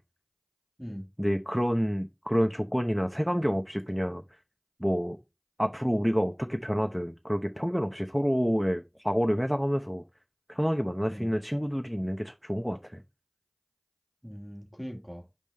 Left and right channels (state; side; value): identical; both; correlation 1.00